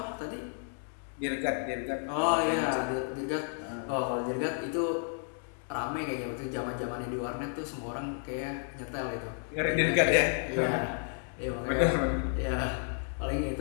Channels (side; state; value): right; silent; 56 dB below the other